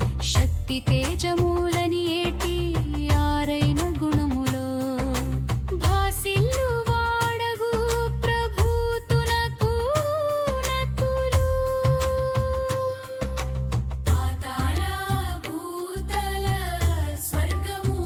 శక్తి తేజములని ఏటి ఆరైన గుణములో భాసిల్లు వాడగు ప్రభుతునకు నతులు పాతాళ భూతల స్వర్గము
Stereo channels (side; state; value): both; identical; correlation 1.00